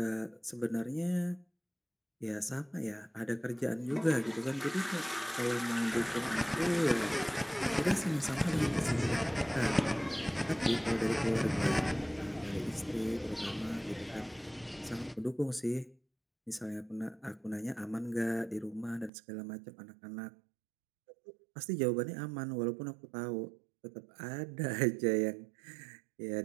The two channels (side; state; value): left; drops out; at 19.1 s